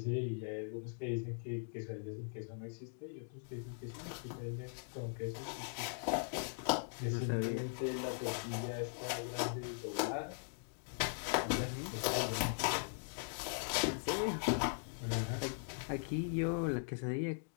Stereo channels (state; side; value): silent; right; digital silence